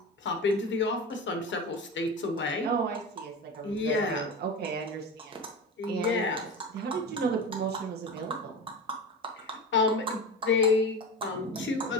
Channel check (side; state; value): both; normal; correlation 0.27